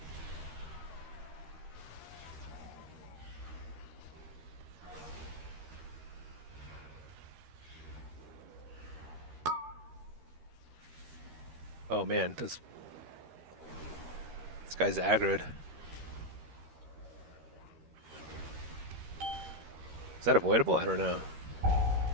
Oh man, this guy's aggroed. Is that avoidable? I don't know.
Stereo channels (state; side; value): late; left; 13 ms